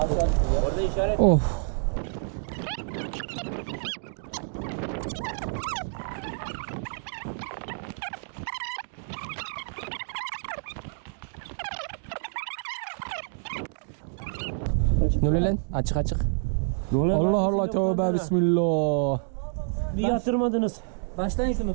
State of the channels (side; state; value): left; silent; digital silence